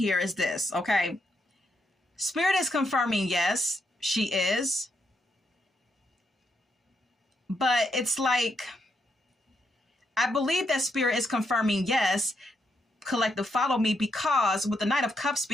is this, okay? Spirit is confirming yes, she is. But it's like, I believe that Spirit is confirming yes, collective follow me, because with the Knight of Cups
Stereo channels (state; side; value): normal; both; correlation 0.79